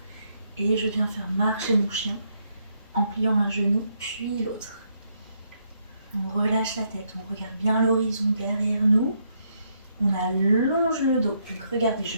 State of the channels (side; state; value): both; inverted; correlation -0.76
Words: Et je viens faire marcher mon chien en pliant un genou puis l'autre. On relâche la tête, on regarde bien l'horizon derrière nous. On allonge le dos. Donc regardez,